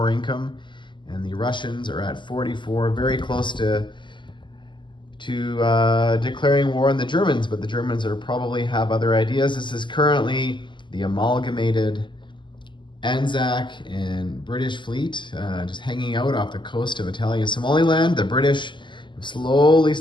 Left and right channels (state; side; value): late; right; 0.23 ms